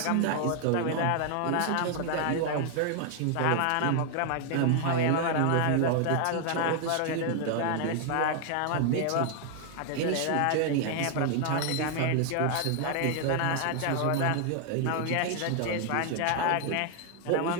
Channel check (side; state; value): both; different; correlation 0.00